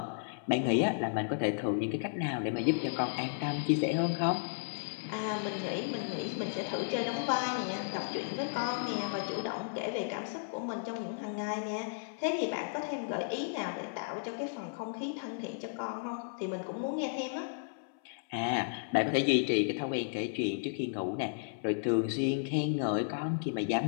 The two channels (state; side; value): silent; right; 55 dB below the other